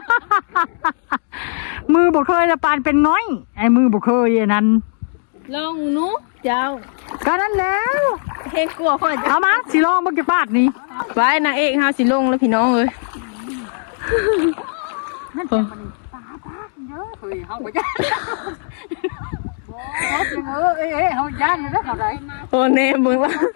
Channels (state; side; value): silent; right; digital silence